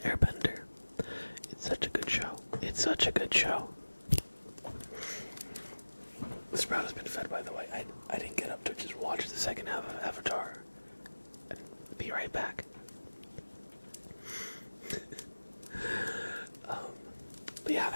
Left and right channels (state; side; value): inverted; both; correlation -1.00